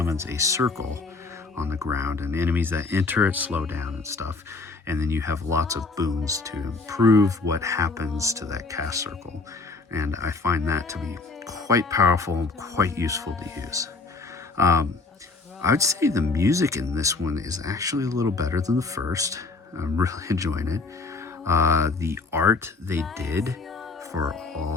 a circle on the ground, and enemies that enter it slow down and stuff. And then you have lots of boons to improve what happens to that cast circle. And I find that to be quite powerful and quite useful to use. I would say the music in this one is actually a little better than the first. I'm really enjoying it. The art they did for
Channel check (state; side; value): quieter; right; 3.8 dB